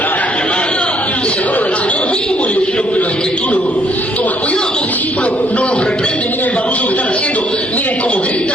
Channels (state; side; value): normal; both; correlation 0.67